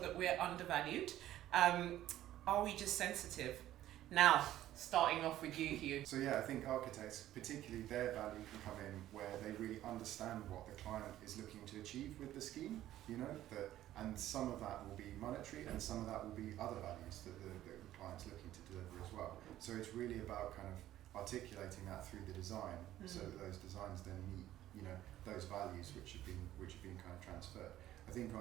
we're undervalued. Are we just sensitive? Now, starting off with you, Hugh. So yeah, I think architects, particularly their value can come in where they really understand what the client is looking to achieve with the scheme, and some of that will be monetary and some of that will be other values that the client's looking to deliver as well. So it's really about kind of articulating that through the design, so that those designs then meet those values which have been kind of transferred. I think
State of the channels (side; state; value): left; quieter; 13.4 dB